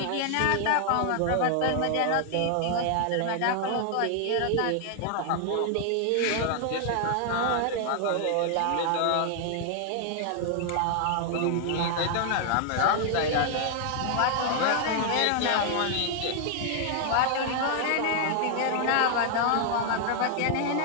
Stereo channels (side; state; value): both; different; correlation 0.00